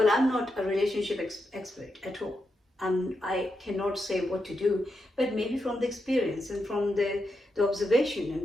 I'm not a relationship expert at all. I cannot say what to do, but maybe from the experience and from the observation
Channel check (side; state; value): both; normal; correlation 0.85